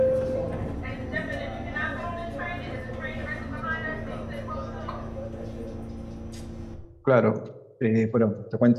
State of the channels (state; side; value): identical; both; correlation 1.00